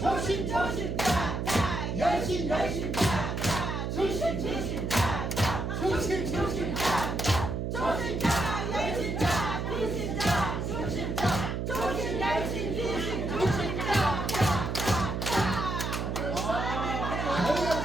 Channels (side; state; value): right; noise; hum, 2 dB below the sound